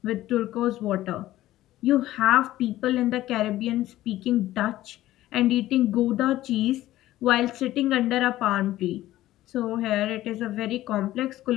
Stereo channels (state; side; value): quieter; right; 15.0 dB